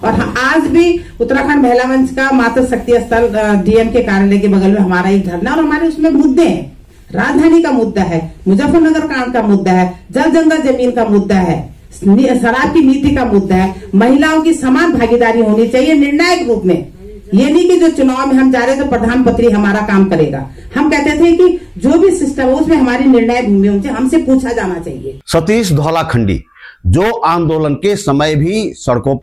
आज भी उत्तराखंड महिला मंच का मातृ शक्ति स्थल डीएम के कार्यालय के बगल में हमारा एक धरना, और हमारे उसमें मुद्दे हैं, राजधानी का मुद्दा है, मुजफ्फरनगर कांड का मुद्दा है, जल जंगल जमीन का मुद्दा है, शराब की नीति का मुद्दा है, महिलाओं की समान भागीदारी होनी चाहिए निर्णायक रूप में। ये नहीं कि जो चुनाव में हम जा रहे तो प्रधानमंत्री हमारा काम करेगा। हम कहते थे कि जो भी सिस्टम है उसमें हमारी निर्णायक भूमि होनी चाहिए, हमसे पूछा जाना चाहिए। सतीश धौलाखंडी जो आंदोलन के समय भी सड़कों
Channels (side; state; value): both; identical; correlation 1.00